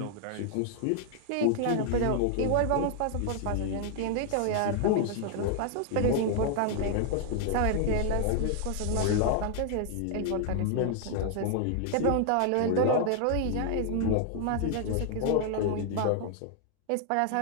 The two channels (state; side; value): different; both; correlation 0.00